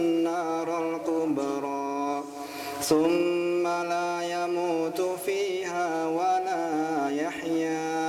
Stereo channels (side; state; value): both; identical; correlation 1.00